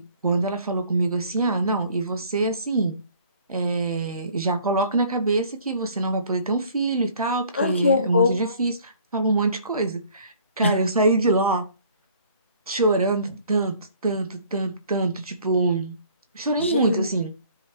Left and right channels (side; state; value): both; inverted; correlation -0.55